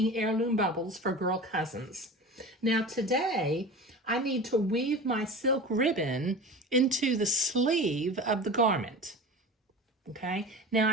heirloom bubbles for girl cousins. Now today I need to weave my silk ribbon into the sleeve of the garment. Okay,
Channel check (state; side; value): normal; both; correlation 0.34